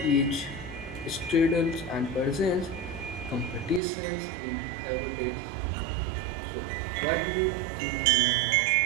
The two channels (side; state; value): left; drops out; at 3.8 s